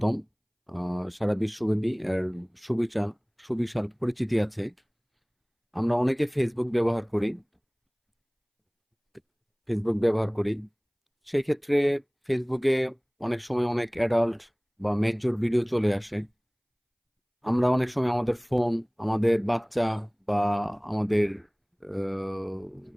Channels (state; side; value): identical; both; correlation 1.00